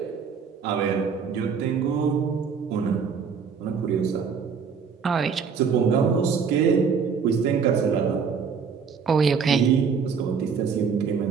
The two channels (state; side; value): quieter; left; 6.1 dB